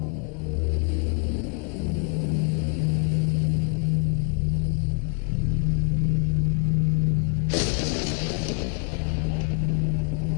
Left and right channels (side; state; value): right; quieter; 40.0 dB